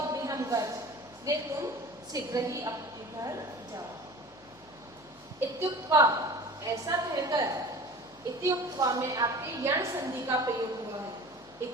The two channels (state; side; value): noise; left; hum, 28 dB below the sound